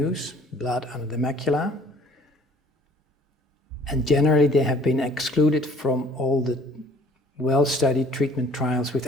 blood under the macula. And generally, they have been excluded from all the well-studied treatment trials with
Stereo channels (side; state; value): both; normal; correlation 0.55